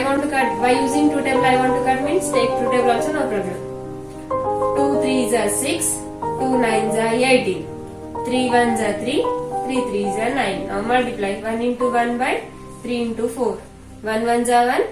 want to cut. By using 2 table I want to cut means take 2 table also, no problem. 2 3s are 6, 2 9s are 18. 3 1s are 3, 3 3s are 9. Now multiply 1 into 1 by 3 into 4. 1 1s are 1,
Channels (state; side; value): identical; both; correlation 1.00